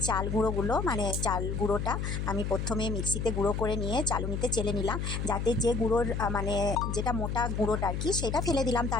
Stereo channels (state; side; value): noise; left; hum, 2 dB below the sound